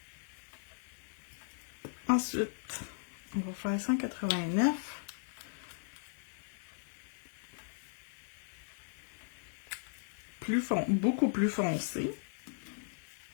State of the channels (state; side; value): silent; right; digital silence